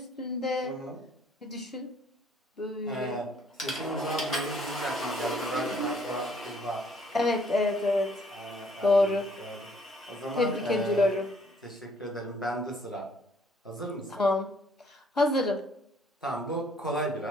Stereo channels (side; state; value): both; normal; correlation 0.63